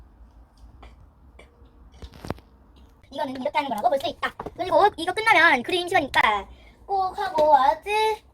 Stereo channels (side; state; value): both; identical; correlation 1.00